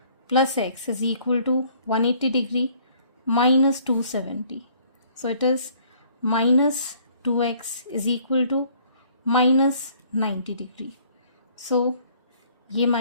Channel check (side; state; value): both; inverted; correlation -0.59